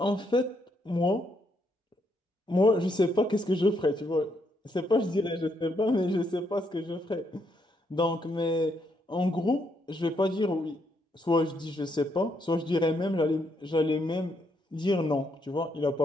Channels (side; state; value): both; normal; correlation 0.76